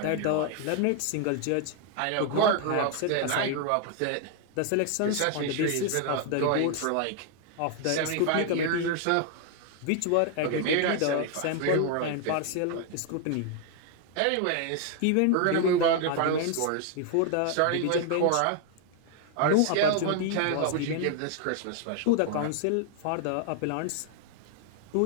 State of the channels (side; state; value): both; different; correlation 0.00